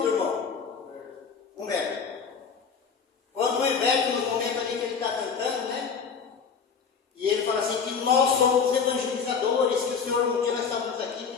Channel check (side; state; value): right; quieter; 6.0 dB